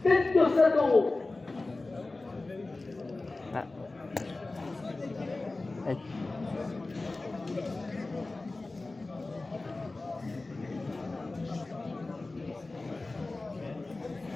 27 euros. Ah. Allez.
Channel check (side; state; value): right; quieter; 3.2 dB